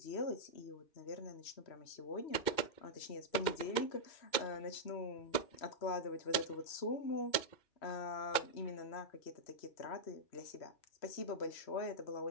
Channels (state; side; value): late; right; 2.2 ms